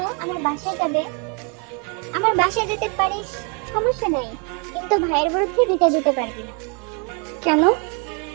আমার বাসায় যাবে, আমার বাসায় যেতে পারিস, সমস্যা নেই, কিন্তু ভাইয়ের বিরুদ্ধে বিচার দিতে পারবি না। কেন?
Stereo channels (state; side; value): quieter; left; 35.9 dB